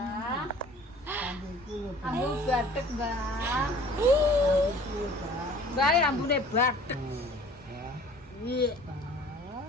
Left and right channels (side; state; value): both; normal; correlation 0.49